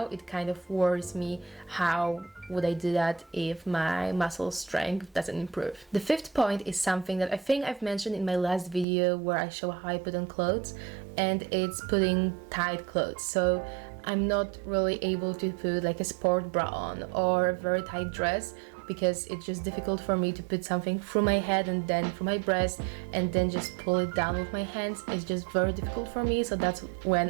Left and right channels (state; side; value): drops out; left; at 8.8 s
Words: it kind of worries me, how would I do that if my muscle strength doesn't improve? The fifth point is something that I think I've mentioned in my last video where I show how I put on clothes, and it's putting tight clothes. So I'm not really able to put like a sport bra on or a very tight dress, because it's just difficult for me to put something through my head and then through my breast and then just pull it down with my hands. It's just very difficult for me, so that's